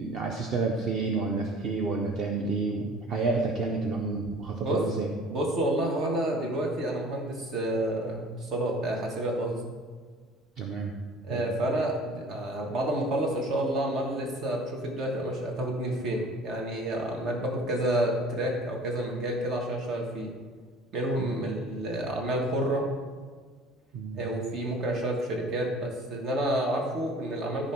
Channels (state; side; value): normal; both; correlation 0.47